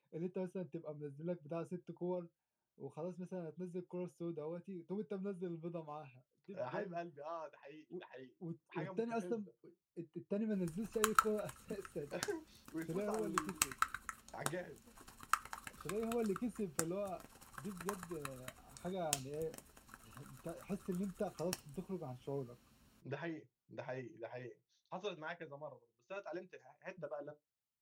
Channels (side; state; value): both; identical; correlation 1.00